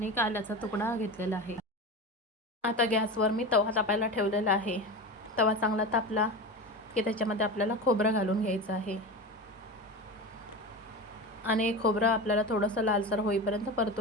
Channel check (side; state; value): both; normal; correlation 0.26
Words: एक आल्याचा तुकडा घेतलेला आहे. आता गॅसवर मी तवा तापायला ठेवलेला आहे. तवा चांगला तापला की त्याच्यामध्ये आपल्याला खोबरं घालून घ्यायचं आहे आणि खोबरं आपल्याला थोडंसं लालसर होईपर्यंत